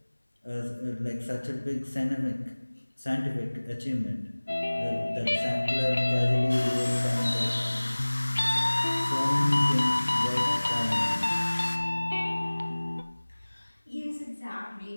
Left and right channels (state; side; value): inverted; both; correlation -1.00